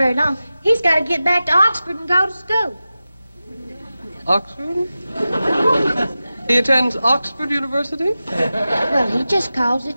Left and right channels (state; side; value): inverted; both; correlation -0.94